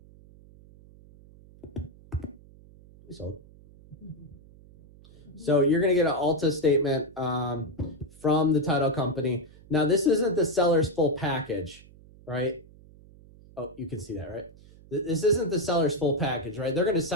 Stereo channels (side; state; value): right; noise; hum, 23 dB below the sound